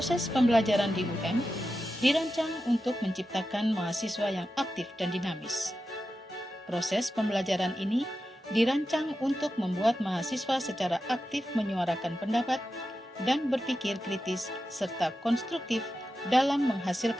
pembelajaran di UM dirancang untuk menciptakan mahasiswa yang aktif dan dinamis. Proses pembelajaran ini dirancang untuk membuat mahasiswa secara aktif menyuarakan pendapat dan berpikir kritis serta konstruktif dalam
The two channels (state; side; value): normal; both; correlation 0.91